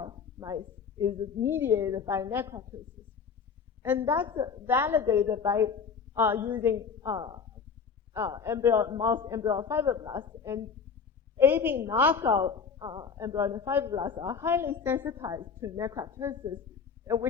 mice is mediated by necroptosis. And that's validated by using mouse embryo fibroblasts. And ABIN knockout embryonic fibroblasts are highly sensitized to necroptosis,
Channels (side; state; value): right; quieter; 6.0 dB